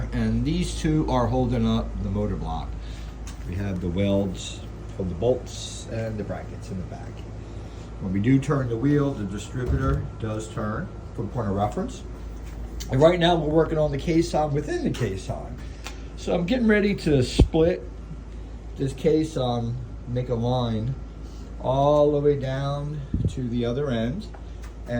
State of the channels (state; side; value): identical; both; correlation 1.00